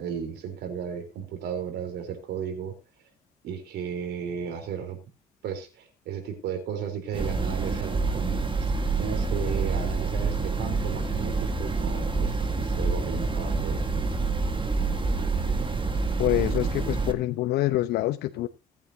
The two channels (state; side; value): normal; both; correlation 0.54